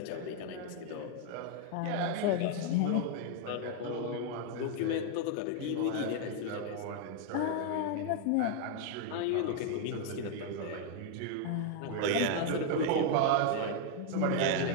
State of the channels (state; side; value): different; both; correlation 0.00